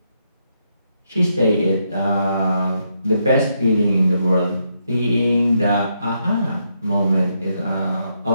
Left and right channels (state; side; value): inverted; both; correlation -0.79